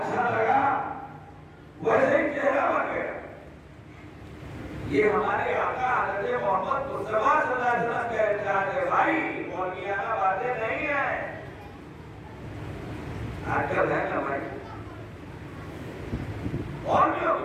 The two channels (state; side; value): identical; both; correlation 1.00